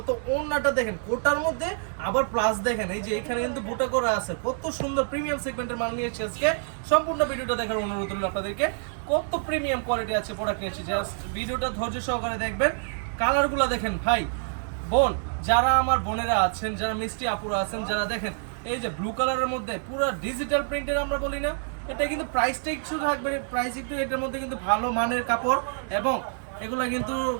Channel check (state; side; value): silent; left; 60 dB below the other